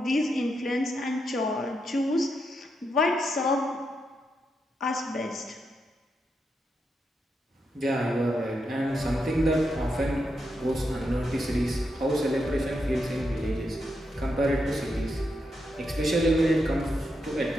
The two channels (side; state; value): both; normal; correlation 0.84